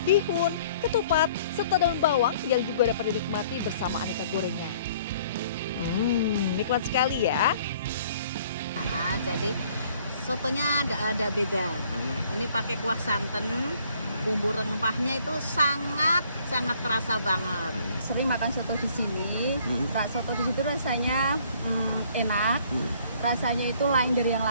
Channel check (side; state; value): both; inverted; correlation -0.59